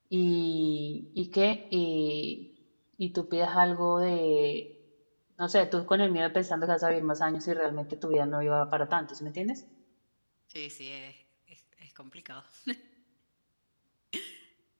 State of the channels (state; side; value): inverted; both; correlation -1.00